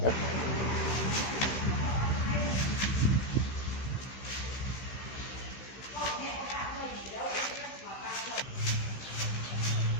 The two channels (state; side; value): late; right; 15 ms